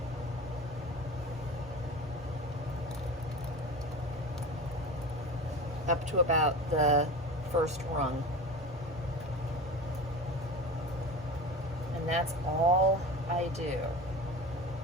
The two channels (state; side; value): normal; both; correlation 0.31